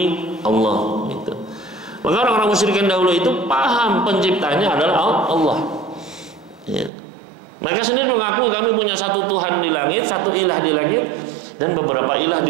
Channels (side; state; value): left; drops out; at 6.9 s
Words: Allah, gitu. Maka orang-orang musyrikin dahulu itu paham penciptanya adalah Allah, ya. Mereka sendiri mengaku kami punya satu Tuhan di langit, satu ilah di langit, dan beberapa ilah